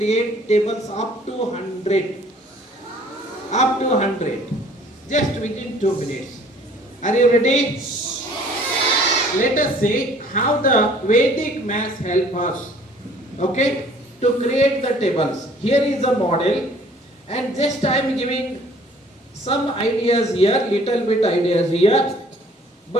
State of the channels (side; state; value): both; normal; correlation 0.55